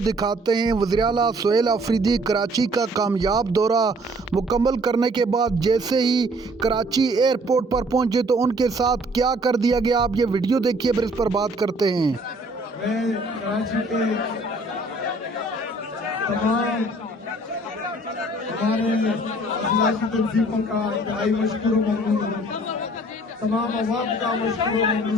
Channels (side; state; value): both; normal; correlation 0.58